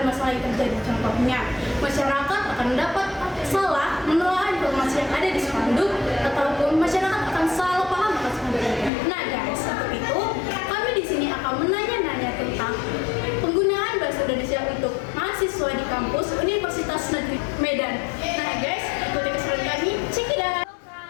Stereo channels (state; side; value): drops out; right; at 8.9 s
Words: masalah yang terjadi. Contohnya, masyarakat akan dapat salah menelaah informasi yang ada di spanduk, ataupun masyarakat akan salah paham atas spanduk itu. Nah, guys, untuk itu kami di sini akan menanya-nanya tentang penggunaan bahasa Indonesia untuk mahasiswa di kampus Universitas Negeri Medan. Nah, guys, ikuti keseruan kami. Check it out.